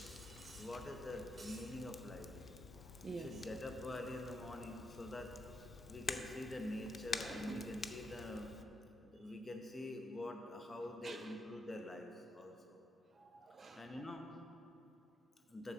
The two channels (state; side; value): normal; both; correlation 0.81